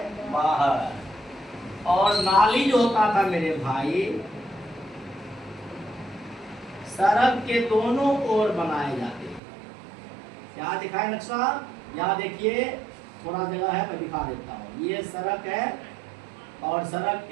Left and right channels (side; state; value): left; drops out; at 9.4 s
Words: बाहर। और नाली जो होता था मेरे भाई, सड़क के दोनों ओर बनाए जाते। क्या दिखाए नक्शा? यहाँ देखिए, थोड़ा जगह है, मैं दिखा देता हूँ। ये सड़क है, और सड़क